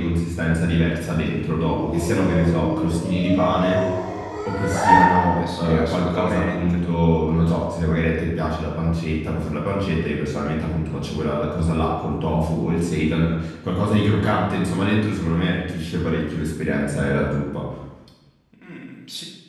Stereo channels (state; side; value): identical; both; correlation 1.00